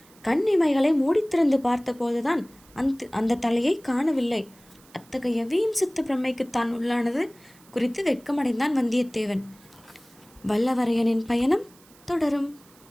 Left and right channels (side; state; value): right; noise; hiss, 27 dB below the sound